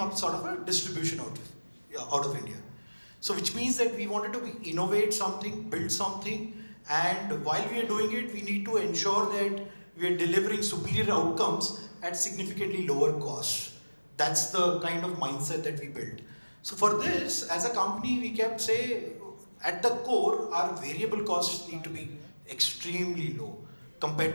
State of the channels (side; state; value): both; inverted; correlation -1.00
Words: sort of a distribution out of India. So which means that we wanted to innovate something, build something, and while we are doing it, we need to ensure that we are delivering superior outcomes at significantly lower costs. That's the kind of mindset that we built. So for this, as a company, we kept say, at the core, our variable costs need to be extremely low compared